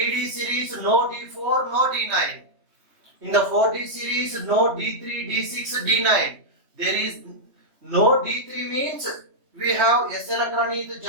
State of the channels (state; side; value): late; left; 3.1 ms